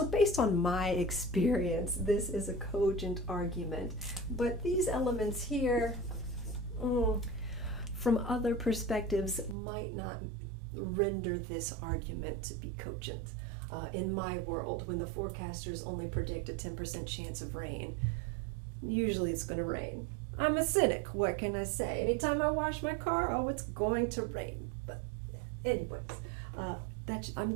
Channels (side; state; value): left; drops out; at 9.6 s